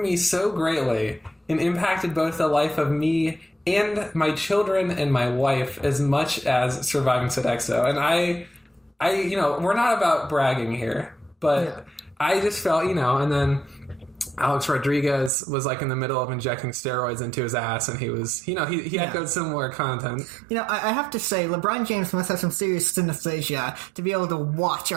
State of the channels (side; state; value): left; drops out; at 15.3 s